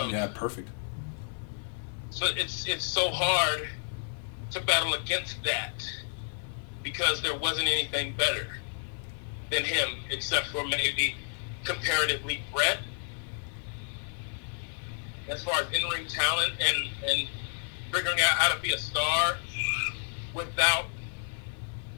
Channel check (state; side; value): silent; right; 56 dB below the other